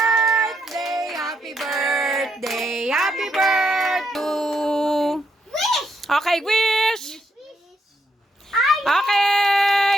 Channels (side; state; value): both; normal; correlation 0.78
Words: happy birthday, happy birthday. Okay, wish.